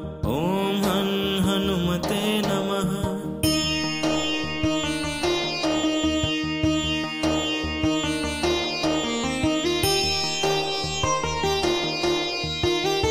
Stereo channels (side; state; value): both; identical; correlation 1.00